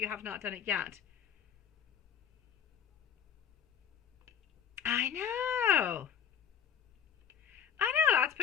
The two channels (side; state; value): right; quieter; 8.4 dB